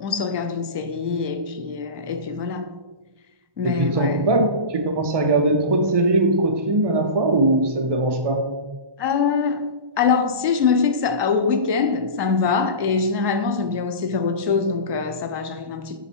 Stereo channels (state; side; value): late; left; 1.2 ms